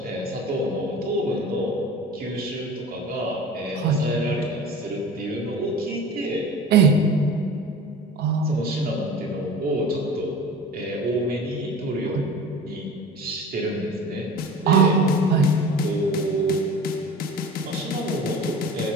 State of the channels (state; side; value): normal; both; correlation 0.37